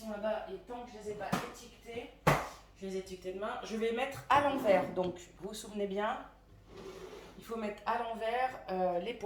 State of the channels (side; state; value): both; identical; correlation 1.00